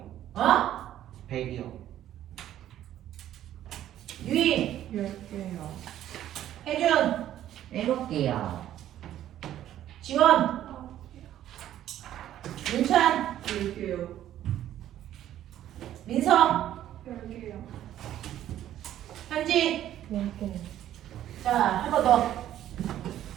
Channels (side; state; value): left; quieter; 12.0 dB